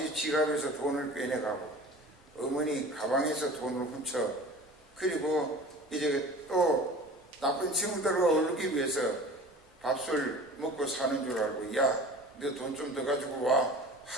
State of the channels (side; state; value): both; normal; correlation 0.40